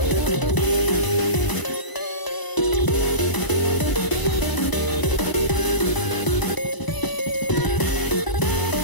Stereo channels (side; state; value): right; late; 1.0 ms